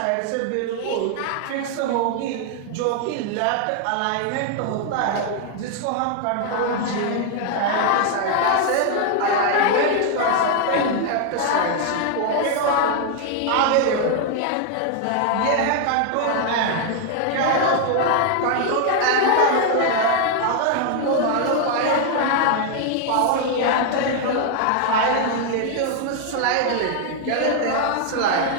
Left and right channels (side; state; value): both; different; correlation 0.00